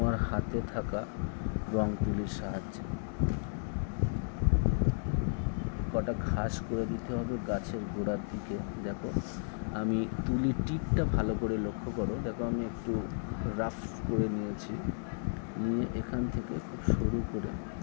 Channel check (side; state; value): right; silent; 55 dB below the other